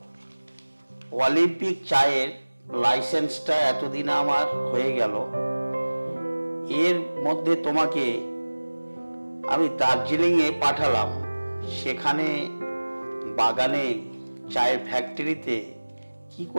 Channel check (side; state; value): both; inverted; correlation -1.00